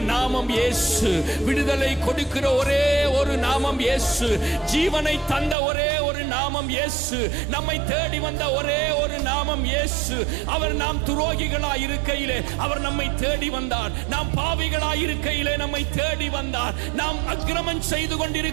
நாமம் இயேசு. விடுதலை கொடுக்கிற ஒரே ஒரு நாமம் இயேசு. ஜீவனை தந்த ஒரே ஒரு நாமம் இயேசு. நம்மை தேடி வந்த ஒரே ஒரு நாமம் இயேசு. அவர் நாம் துரோகிகளாய் இருக்கையிலே அவர் நம்மை தேடி வந்தார். நாம் பாவிகளாய் இருக்கையிலே நம்மை தேடி வந்தார். நாம் அக்கிரமம் செய்து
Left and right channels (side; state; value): left; drops out; at 5.6 s